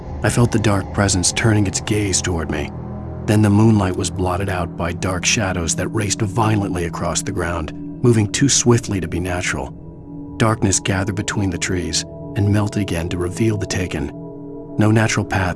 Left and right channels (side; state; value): both; identical; correlation 1.00